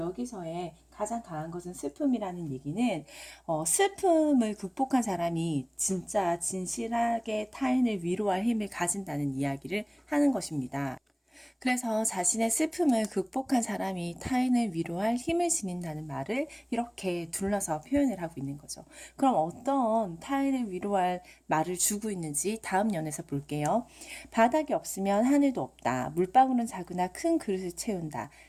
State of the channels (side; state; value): both; identical; correlation 1.00